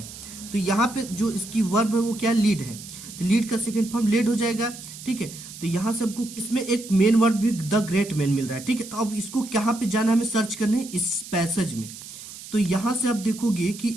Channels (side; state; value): right; noise; hiss, 14 dB below the sound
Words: तो यहाँ पे जो इसकी वर्ब है वो क्या, लीड है, तो लीड का सेकेंड फॉर्म लेड हो जाएगा। ठीक है, तो यहाँ से हमको इसमें एक मेन वर्ड भी द ग्रेट मैन मिल रहा है। ठीक है, तो अब इसको कहाँ पे जाना, हमें सर्च करने इस पैसेज में। तो यहाँ से आप देखोगे